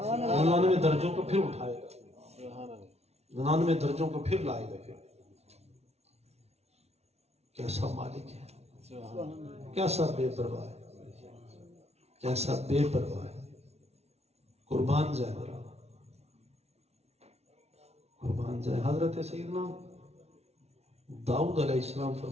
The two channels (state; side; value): late; left; 0.31 ms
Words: درجوں کو پھر اٹھائے گا، 99 درجوں کو پھر لائے گا۔ پھر کیسا مالک ہے، کیسا بے پرواہ ہے، کیسا بے پرواہ ہے، قربان جائے۔ قربان جائے. حضرت سیدنا داؤد علیہ السلام